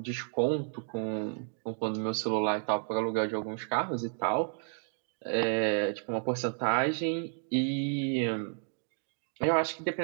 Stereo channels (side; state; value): left; silent; 57 dB below the other